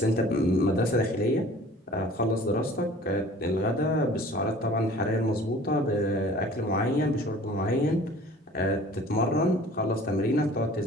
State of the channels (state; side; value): normal; both; correlation 0.47